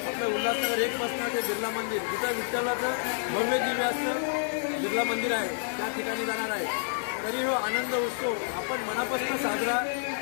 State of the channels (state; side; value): silent; right; digital silence